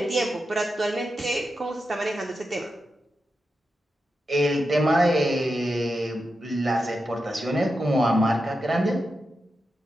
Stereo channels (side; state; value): both; normal; correlation 0.89